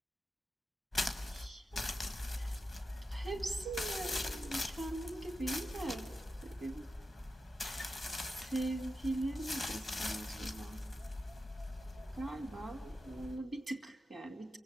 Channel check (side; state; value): both; normal; correlation 0.90